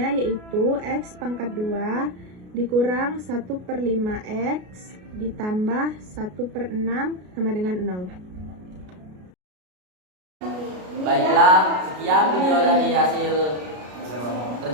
yaitu x pangkat 2 dikurang 1 per 5x ditambah 1 per 6 sama dengan 0. Baiklah, sekian video dari hasil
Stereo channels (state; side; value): late; left; 33 ms